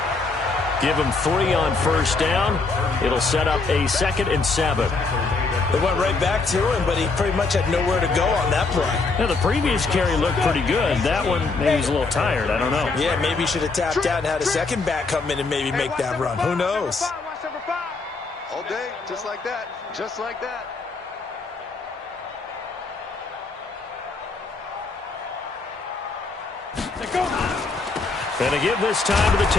Give them 3 on 1st down. It'll set up a 2nd and 7. They went right back to him, but he pretty much had nowhere to go on that play. Yeah, the previous carry looked pretty good. That one, maybe he's a little tired. I don't know. Yeah, maybe he should have tapped out and had a second back come in and maybe make that run. Who knows? All day, just like that. Just like that. And to give this time to the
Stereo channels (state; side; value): quieter; right; 4.0 dB